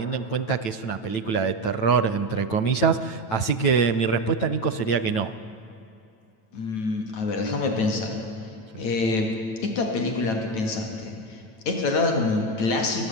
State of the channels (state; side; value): late; right; 9.1 ms